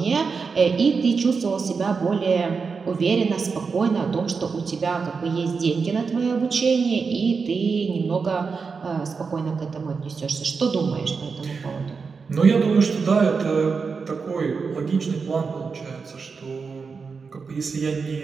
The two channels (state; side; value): quieter; left; 5.1 dB